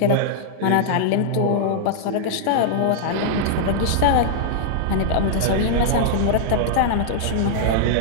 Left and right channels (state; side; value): different; both; correlation -0.01